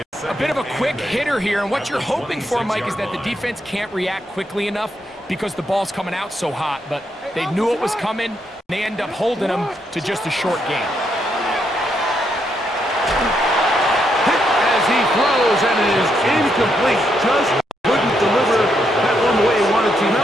A bit of a quick hitter here, and what you're hoping for, Mike, is that the defense can't react quickly enough because the ball's coming out so hot. But they knew it was coming, and they end up holding them to just a short game. Hit as he throws, and it is incomplete. Just couldn't deliver that one the way he wanted to.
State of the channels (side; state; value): both; normal; correlation 0.78